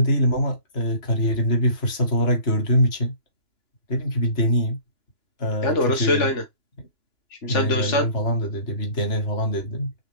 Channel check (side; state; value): right; late; 2.9 ms